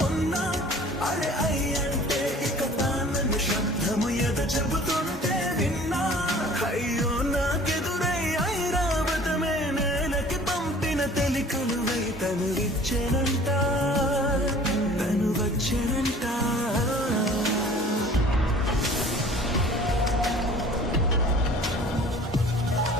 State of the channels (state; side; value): normal; both; correlation 0.48